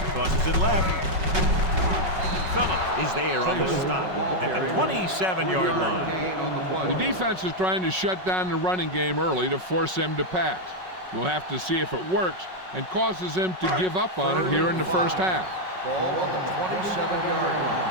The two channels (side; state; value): left; late; 5.4 ms